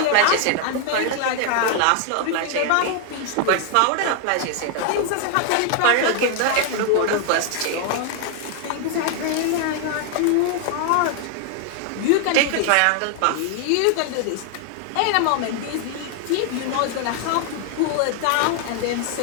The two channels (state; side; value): different; both; correlation 0.00